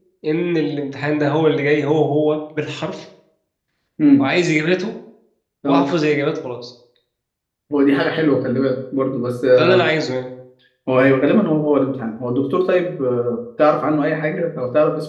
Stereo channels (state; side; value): identical; both; correlation 1.00